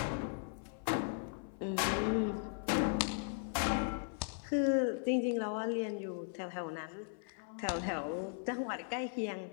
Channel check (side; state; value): right; silent; 53 dB below the other